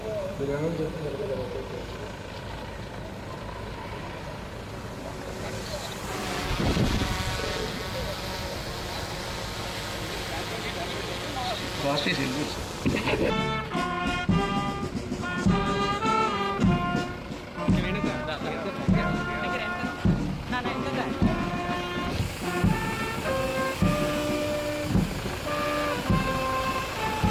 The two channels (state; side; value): identical; both; correlation 1.00